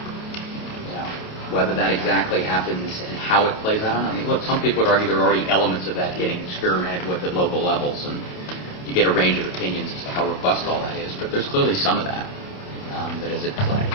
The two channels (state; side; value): late; right; 28 ms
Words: Whether that exactly happens and how it plays out, I mean, look, some people would argue there are already elements of that getting experimented with at local levels, and you get a range of opinions as to how robust all that is. But there's clearly some of that that is at play.